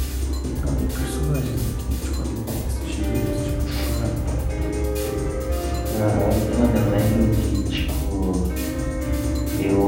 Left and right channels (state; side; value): identical; both; correlation 1.00